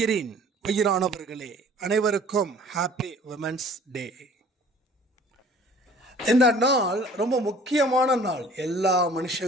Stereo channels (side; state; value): both; normal; correlation 0.50